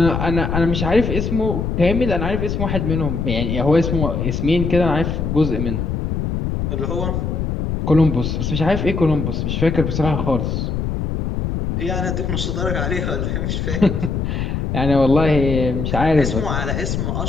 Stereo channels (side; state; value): left; noise; rumble, 1 dB below the sound